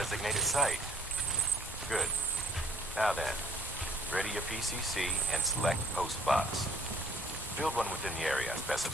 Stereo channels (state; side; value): normal; both; correlation 0.61